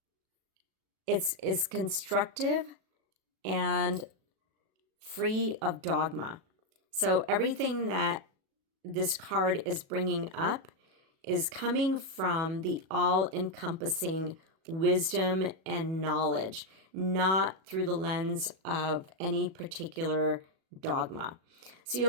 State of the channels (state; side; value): late; left; 37 ms